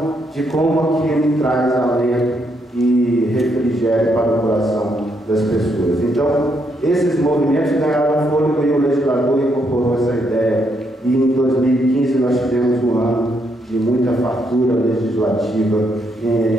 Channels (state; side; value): normal; both; correlation 0.76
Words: de como aquilo traz alento e refrigério para o coração das pessoas. Então, esses movimentos ganharam fôlego e o legislador incorporou essa ideia. E em 2015 nós tivemos um ano de muita fartura legislativa